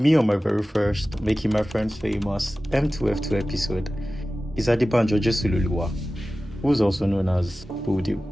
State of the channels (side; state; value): both; normal; correlation 0.96